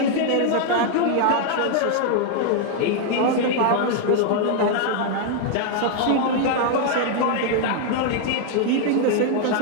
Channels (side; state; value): both; different; correlation 0.00